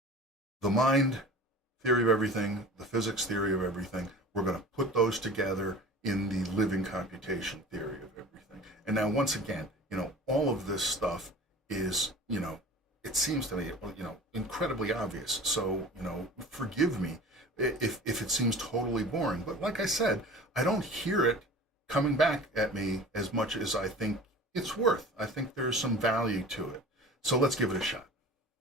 the mind theory of everything, the physics theory of everything, we're going to put those together in the living computation theory of everything. And now, once again, all of this stuff is, it seems to me, incredibly obvious. So, forgive me if it seems totally boring. But like I said, I don't hear it coming back at me as much as I think it's worth. I think there's some value to it. So let's give it a shot.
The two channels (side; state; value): both; normal; correlation 0.40